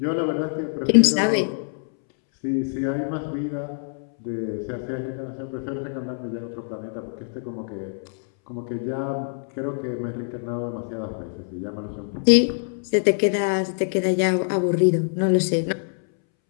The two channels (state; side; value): silent; right; 62 dB below the other